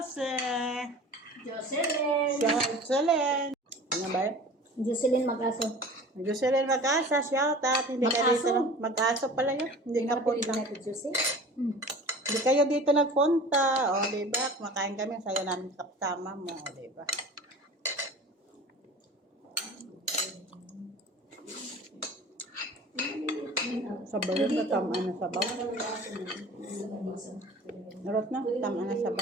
Jocelyn! Jocelyn! Ano ba yun? Jocelyn Mag-aso. Jocelyn Mag-asa, shout out. Hindi ka Mag-aso? dito. Mag-aso pala yun. Hindi ka punta. na tidjusi. Hindi kayo dito nagpunta. O, diba? Kumakain kami. Sayo namin kaptama mo. O, diba? Sabaw na tama na sabaw. Narot na, tama na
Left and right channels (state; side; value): normal; both; correlation 0.41